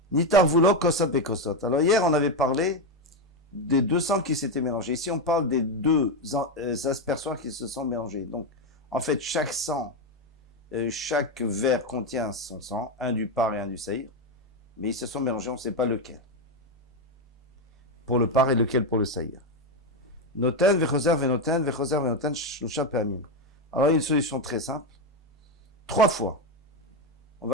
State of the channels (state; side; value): normal; both; correlation 0.08